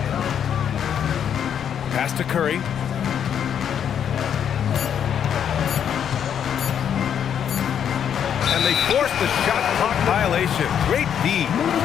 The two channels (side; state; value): right; quieter; 8.7 dB